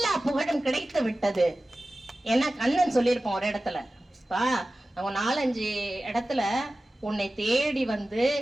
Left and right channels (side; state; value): both; normal; correlation 0.96